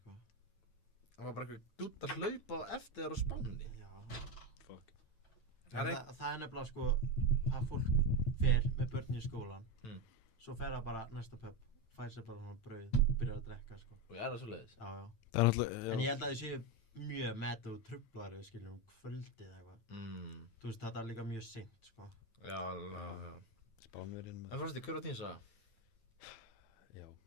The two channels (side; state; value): right; late; 8.9 ms